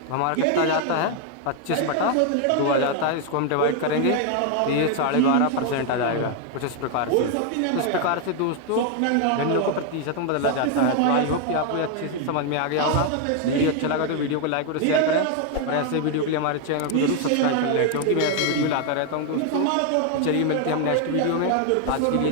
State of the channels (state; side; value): different; both; correlation 0.00